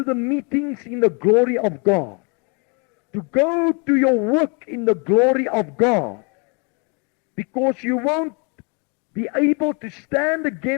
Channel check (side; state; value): right; quieter; 33.9 dB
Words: the meetings in the glory of God. To go to your work in the glory of God. Because you won't be able to stand